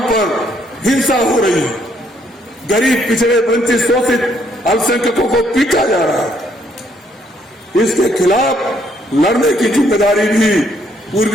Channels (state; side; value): normal; both; correlation 0.69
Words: पर हिंसा हो रही है। गरीब, पिछड़े, वंचित, शोषित अल्पसंख्यकों को पीटा जा रहा है। इसके खिलाफ लड़ने की जिम्मेदारी भी